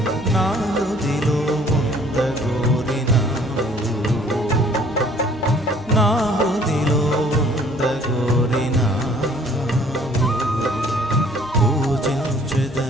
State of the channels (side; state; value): both; normal; correlation 0.57